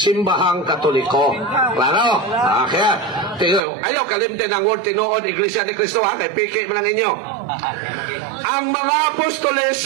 Katoliko. Klaro? Kaya, ayaw kalimtin ang word tinuod Iglesia ni Kristo, ha? Kaya piki mo lang inyo. Ang mga apostoles,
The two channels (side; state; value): left; drops out; at 3.6 s